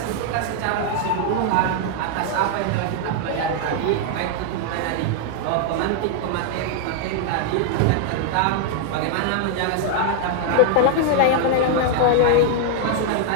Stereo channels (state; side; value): different; both; correlation 0.00